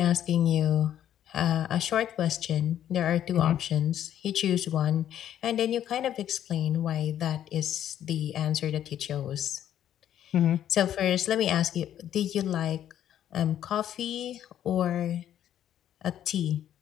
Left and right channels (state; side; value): quieter; right; 10.8 dB